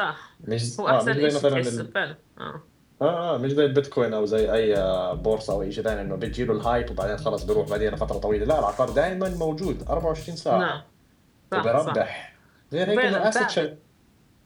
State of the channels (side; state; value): both; identical; correlation 1.00